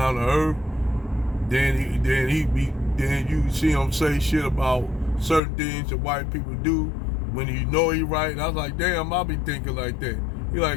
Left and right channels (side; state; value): right; drops out; at 5.4 s